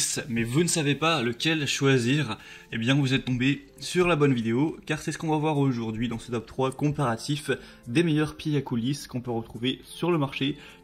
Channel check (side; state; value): both; identical; correlation 1.00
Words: mais vous ne savez pas lequel choisir, eh bien vous êtes tombé sur la bonne vidéo, car c'est ce qu'on va voir aujourd'hui dans ce top 3 comparatif des meilleurs pieds à coulisses qu'on peut retrouver sur le marché.